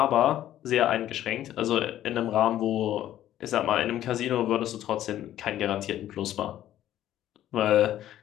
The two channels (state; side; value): quieter; right; 12.4 dB